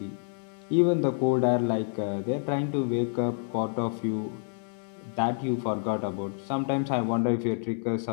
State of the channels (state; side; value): silent; right; 59 dB below the other